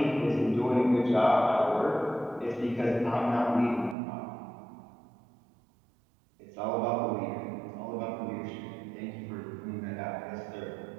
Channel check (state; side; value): drops out; left; at 4.0 s